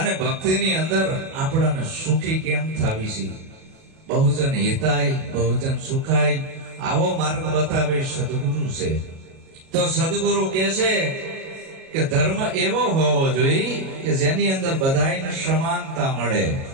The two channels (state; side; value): late; left; 37 ms